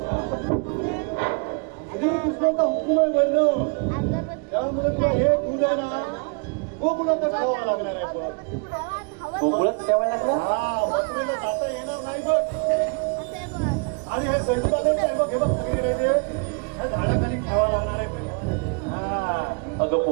श्रीकृष्णाचा हुकूम आहे म्हणणं. त्यामुळे तुला हे दूध आहे ना गोकुळातच ठेवावं लागणार आहे बघ. गोकुळात ठेवायला लागला? हा मथुरेला जाता येणार नाही बघ. आणि हे स्वयंपाक आहे बघ हे बघ सगळीकडे ते ह्या झाडाखाली ठेवावं लागणार आहे हा. अगं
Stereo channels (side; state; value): left; quieter; 34.9 dB